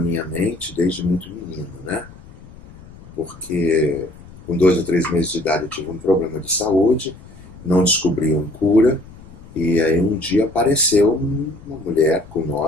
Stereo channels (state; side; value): noise; left; rumble, 20 dB below the sound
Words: mente desde muito menino, né? Porque com 2 ou 3 meses de idade eu tive um problema de saúde, não descobriam cura, e aí um dia apareceu uma mulher com